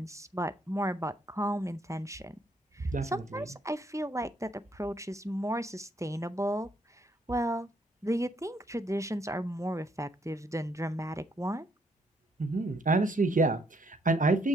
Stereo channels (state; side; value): normal; both; correlation 0.71